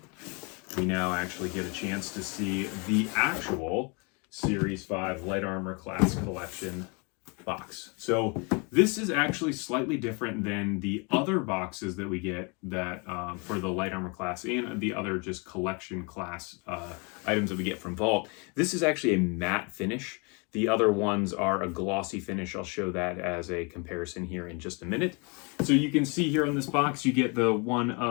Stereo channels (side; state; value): right; quieter; 32.0 dB